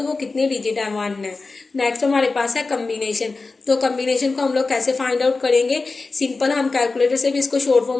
वो कितने डिजिट है? वन है। नेक्स्ट हमारे पास है कम्बिनेशन। तो कम्बिनेशन को हम लोग कैसे फाइंड आउट करेंगे? सिंपल, हम कैलकुलेटर से भी इसको शॉर्ट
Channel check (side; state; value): right; quieter; 3.8 dB